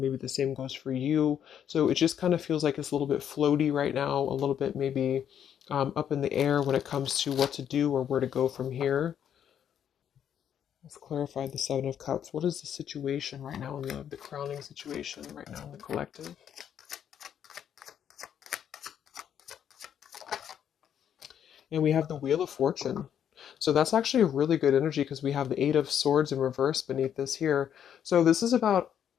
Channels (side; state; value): right; quieter; 9.2 dB